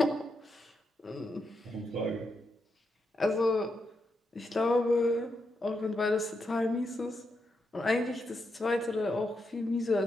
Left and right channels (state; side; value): normal; both; correlation 0.83